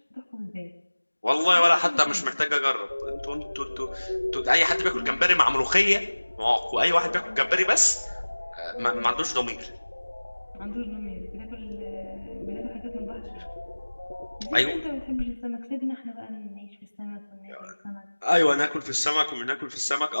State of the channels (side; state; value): both; inverted; correlation -1.00